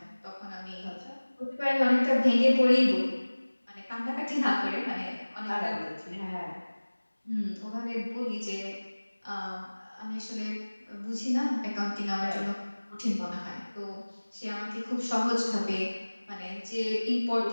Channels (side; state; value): both; inverted; correlation -1.00